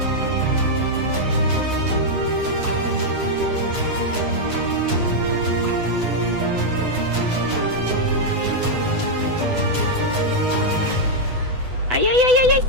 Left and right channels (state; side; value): late; left; 8.0 ms